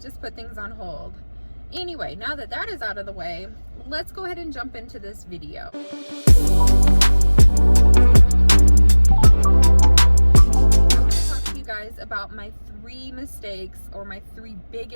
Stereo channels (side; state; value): both; inverted; correlation -1.00